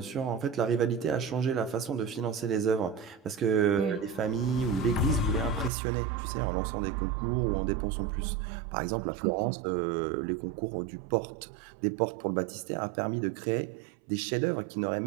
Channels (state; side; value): drops out; left; at 5.7 s